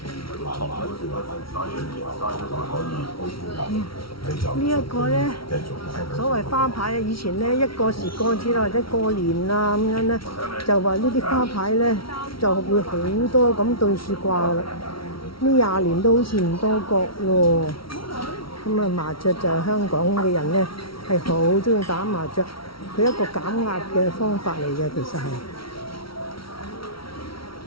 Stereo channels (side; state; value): right; late; 0.75 ms